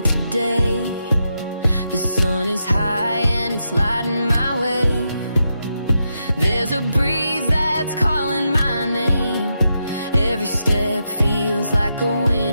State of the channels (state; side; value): inverted; both; correlation -0.84